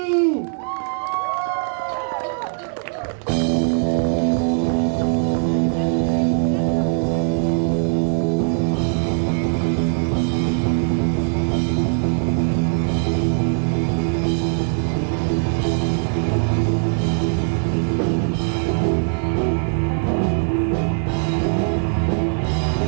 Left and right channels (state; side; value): silent; left; 61 dB below the other